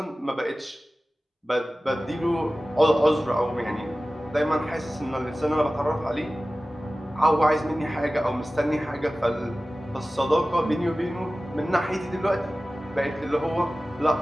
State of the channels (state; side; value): normal; both; correlation 0.96